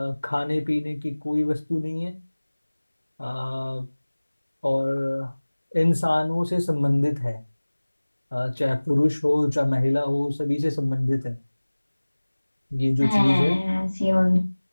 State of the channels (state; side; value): inverted; both; correlation -1.00